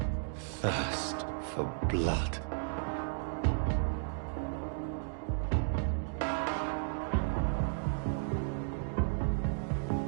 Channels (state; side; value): silent; left; digital silence